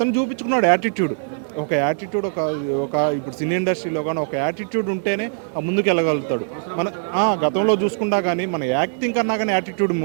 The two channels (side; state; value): left; silent; digital silence